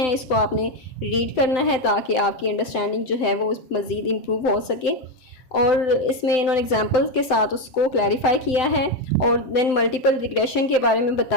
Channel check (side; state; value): right; late; 7.8 ms